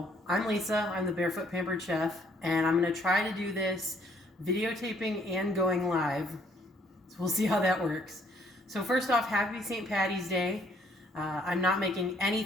I'm Lisa, I'm the Barefoot Pampered Chef, and I'm going to try to do this videotaping and going live, so we'll see how that works. So first off, happy St. Patty's Day. I'm not making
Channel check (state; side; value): normal; both; correlation 0.64